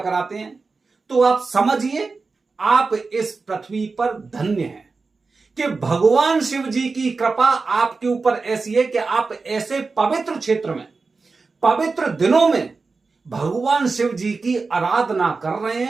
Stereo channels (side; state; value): left; quieter; 4.2 dB